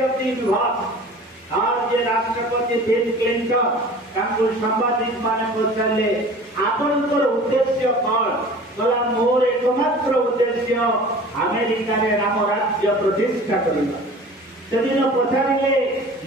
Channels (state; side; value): normal; both; correlation 0.42